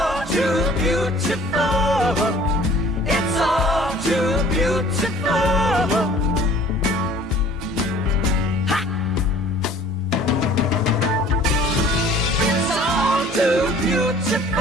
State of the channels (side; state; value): both; normal; correlation 0.50